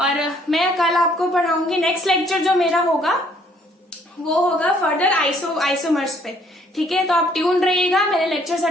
मैं कल आपको पढ़ाऊंगी, नेक्स्ट लेक्चर जो मेरा होगा वो होगा फर्दर आइसोमर्स पे। ठीक है, तो आप ट्यून रहिएगा, मेरे लेक्चर्स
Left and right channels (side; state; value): both; normal; correlation 0.63